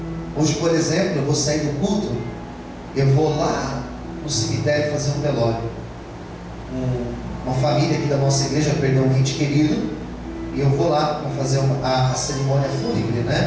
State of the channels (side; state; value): both; identical; correlation 1.00